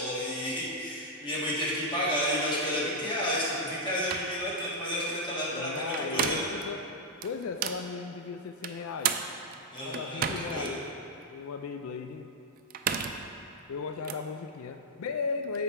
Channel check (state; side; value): normal; both; correlation -0.02